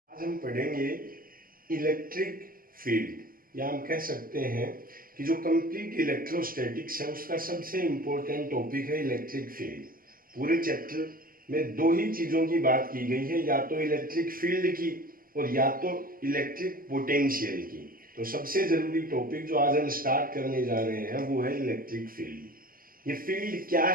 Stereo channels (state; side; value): late; left; 0.42 ms